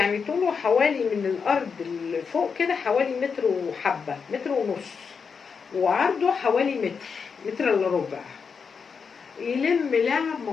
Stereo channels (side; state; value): right; quieter; 5.8 dB